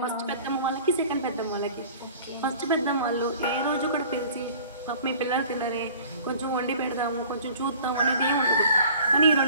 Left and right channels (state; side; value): inverted; both; correlation -0.48